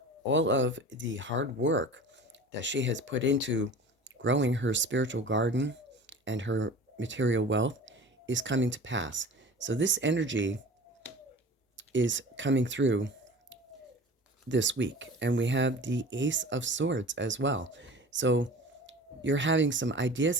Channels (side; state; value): both; normal; correlation 0.39